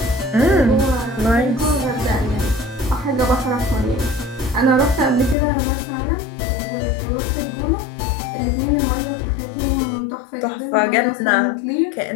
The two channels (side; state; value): right; drops out; at 5.4 s